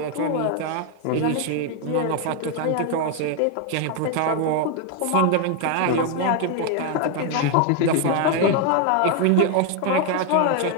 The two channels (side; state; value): both; different; correlation 0.01